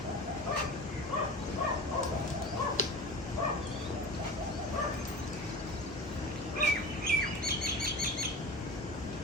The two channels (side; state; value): both; normal; correlation 0.34